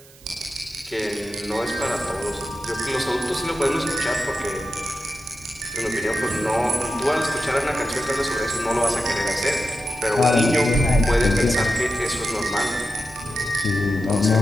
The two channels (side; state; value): right; noise; hiss, 24 dB below the sound